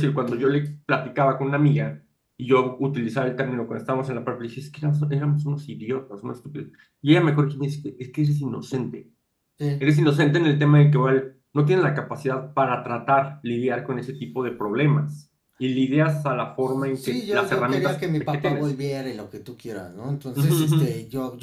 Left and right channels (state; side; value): identical; both; correlation 1.00